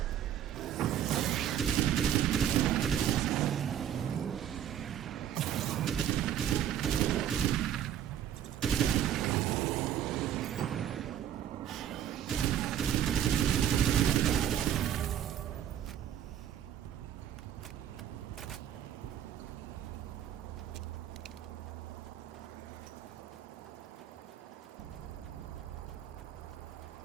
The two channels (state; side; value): quieter; left; 10.3 dB